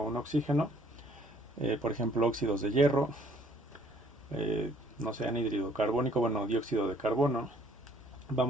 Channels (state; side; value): normal; both; correlation 0.60